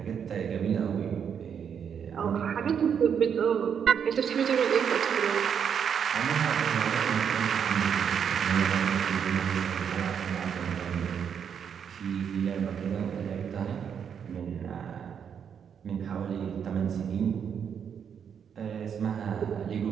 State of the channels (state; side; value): quieter; left; 7.6 dB